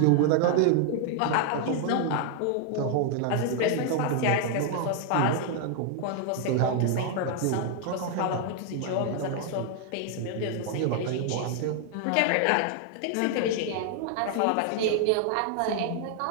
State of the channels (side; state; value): both; different; correlation 0.00